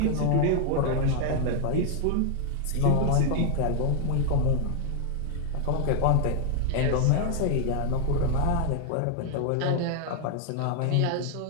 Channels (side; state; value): both; different; correlation 0.00